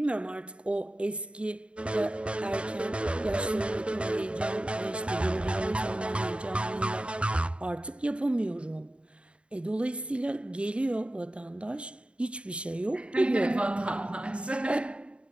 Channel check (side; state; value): left; late; 0.057 ms